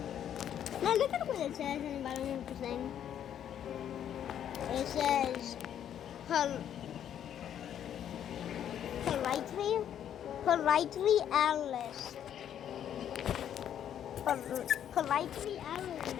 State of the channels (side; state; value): right; quieter; 9.8 dB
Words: Now look at what it says in the bottom of the thing. It says politely Alice. Politely